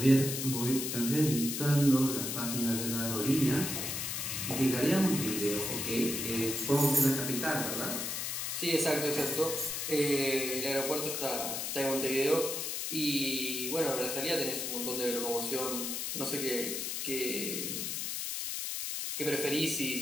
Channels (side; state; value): left; noise; hiss, 3 dB below the sound